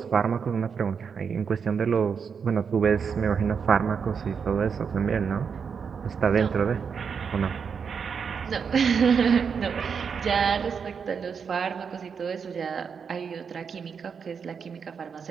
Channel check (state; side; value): quieter; left; 6.3 dB